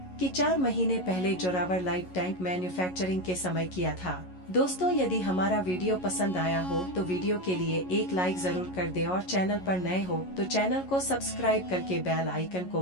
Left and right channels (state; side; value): late; right; 11 ms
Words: कि 4 महीने पहले जोरावर लाइट टैंक मैन्युफैक्चरिंग के समय किया था। दोस्तों, यदि हमारा वीडियो पसंद आया हो तो वीडियो के लिए एक लाइक जरूर कर दे और चैनल पर नए हो तो चैनल को सब्सक्राइब करके बेल आइकन को